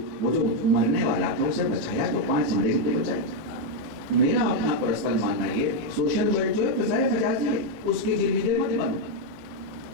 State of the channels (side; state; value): left; late; 19 ms